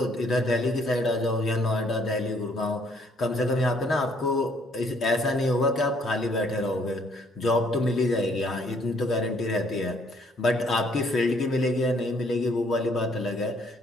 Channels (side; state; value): both; normal; correlation 0.65